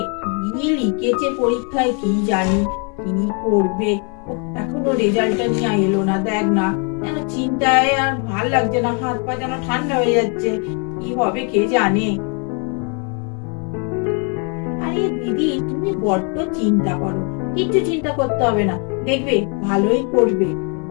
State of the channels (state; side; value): quieter; right; 37.1 dB